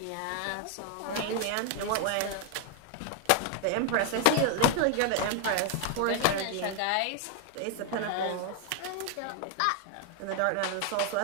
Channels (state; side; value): different; both; correlation 0.01